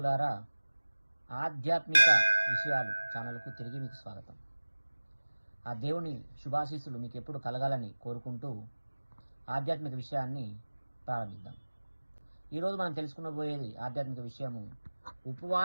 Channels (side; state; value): both; inverted; correlation -1.00